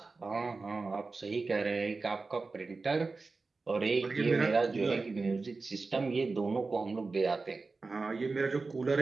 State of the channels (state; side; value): quieter; left; 3.9 dB